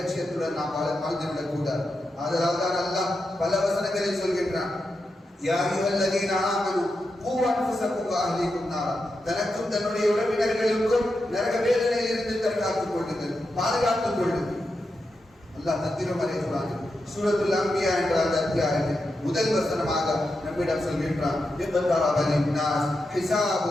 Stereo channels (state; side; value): normal; both; correlation 0.88